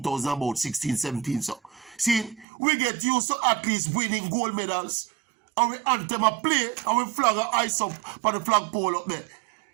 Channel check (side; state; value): left; drops out; at 2.5 s